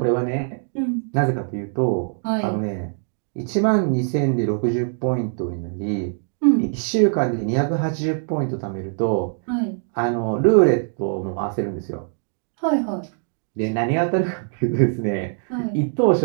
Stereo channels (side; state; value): left; silent; digital silence